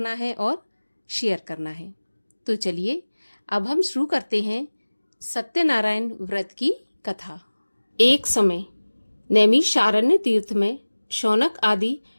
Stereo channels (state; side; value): inverted; both; correlation -1.00